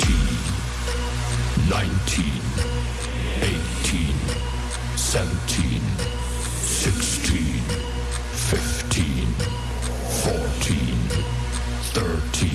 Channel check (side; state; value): both; identical; correlation 1.00